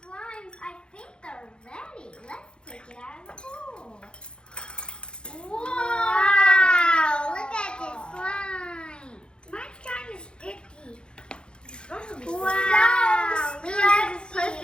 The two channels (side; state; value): right; late; 0.052 ms